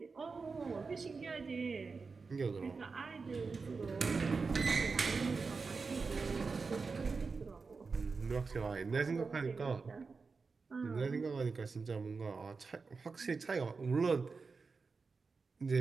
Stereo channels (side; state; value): left; quieter; 4.6 dB